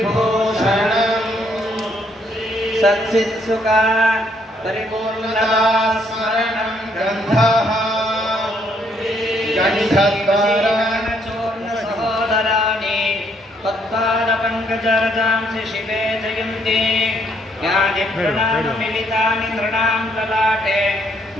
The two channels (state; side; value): normal; both; correlation 0.70